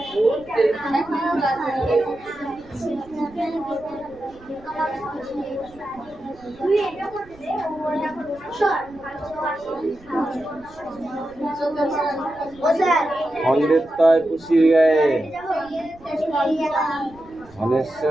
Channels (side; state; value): right; noise; rumble, 24 dB below the sound